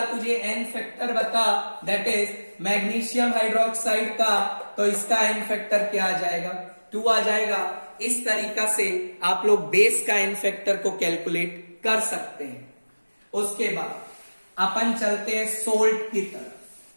तुझे एन फैक्टर बता, दैट इज मैग्नीशियम हाइड्रोक्साइड का, तो इसका एन फैक्टर क्या आ जाएगा? 2 आ जाएगा। इस तरीका से आप लोग बेस का एन फैक्टर को कैलकुलेट कर सकते हैं। उसके बाद अपन चलते हैं सोल्ट की तरफ।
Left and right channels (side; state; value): both; inverted; correlation -1.00